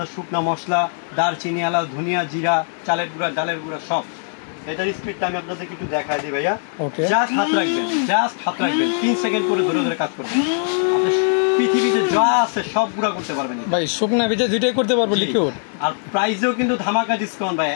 শুকনা মশলা, দারচিনি, এলাচ, ধনিয়া, জিরা, চালের গুঁড়া, ডালের গুঁড়া, সব। এটার স্পিডটা আমি আপনাদেরকে একটু দেখাই দিই ভাইয়া। জাস্ট হাত রাখবেন 3 সেকেন্ড করে ধরে ধরে কাজ করবেন। আপনি পৃথিবীতে যা আছে সব গুঁড়া করতে পারবেন ভাই, শুকনা ভেজে দুইটাই করতে পারবো লিকুইড। আর প্রাইসেও কিন্তু ধামাকা ডিসকাউন্ট ভাই,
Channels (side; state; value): right; silent; digital silence